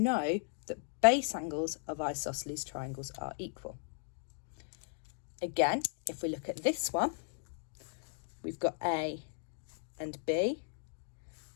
that base angles of isosceles triangles are equal. Again, if we look at this one, we've got A and B,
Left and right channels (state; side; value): silent; right; digital silence